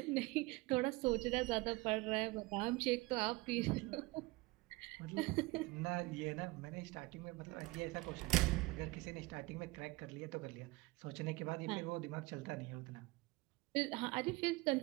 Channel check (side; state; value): left; quieter; 22.3 dB